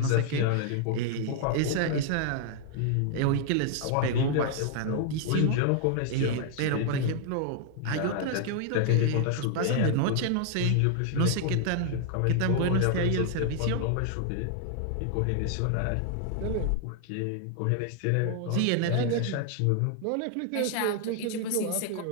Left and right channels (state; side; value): different; both; correlation 0.00